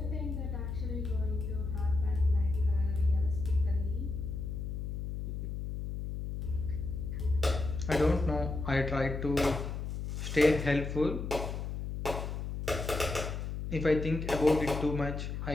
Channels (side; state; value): left; noise; hum, 5 dB below the sound